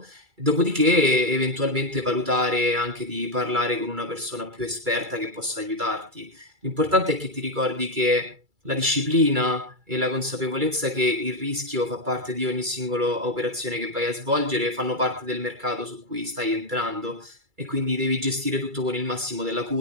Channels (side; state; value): left; late; 2.3 ms